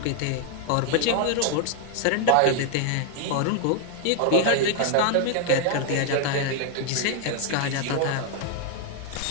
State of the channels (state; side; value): different; both; correlation 0.00